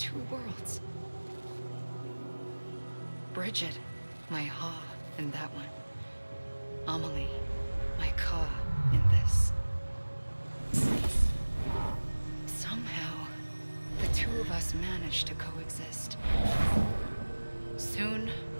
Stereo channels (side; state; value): both; inverted; correlation -1.00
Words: worlds. Bridget, my ha in that one. Amelie, my ka in this. Somehow, the two of us managed to coexist. Soon,